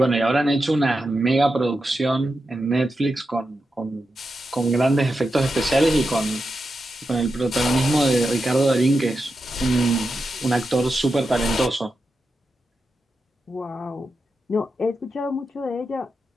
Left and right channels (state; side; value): normal; both; correlation 0.89